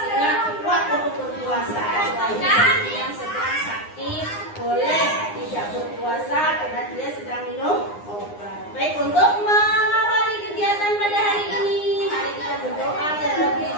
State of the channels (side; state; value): right; late; 9.7 ms